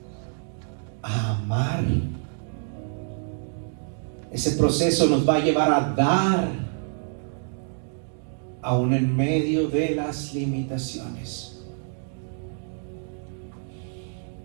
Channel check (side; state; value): left; silent; 60 dB below the other